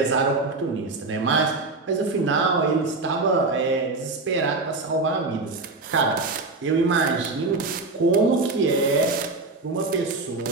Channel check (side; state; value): left; quieter; 3.5 dB